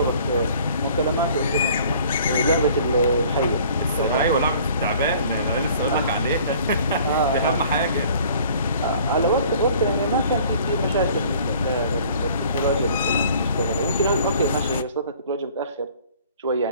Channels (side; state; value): both; inverted; correlation -0.53